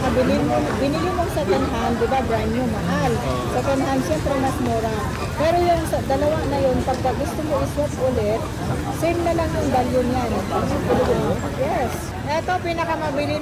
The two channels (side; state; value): both; identical; correlation 1.00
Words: binili mo second hand, di ba? Brand new, mahal. Second hand, syempre mas mura. Pero yung dalawa na yun, pagka gusto mo iswap ulit, same na lang yung value niyan. Yes. Ito, pinakamabili